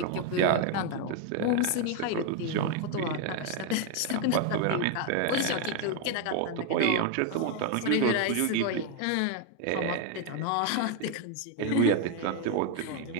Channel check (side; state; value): both; different; correlation 0.01